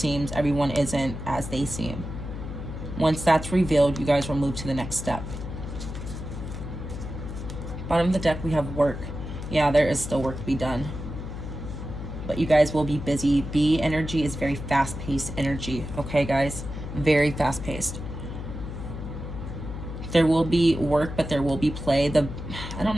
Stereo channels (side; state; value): left; noise; hum, 8 dB below the sound